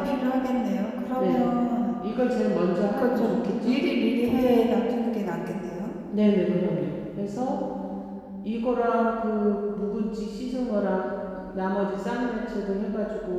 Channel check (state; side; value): identical; both; correlation 1.00